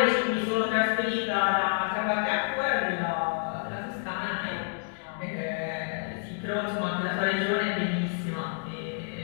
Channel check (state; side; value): silent; right; digital silence